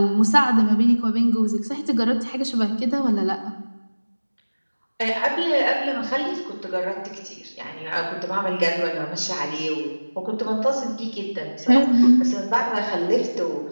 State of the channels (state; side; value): inverted; both; correlation -1.00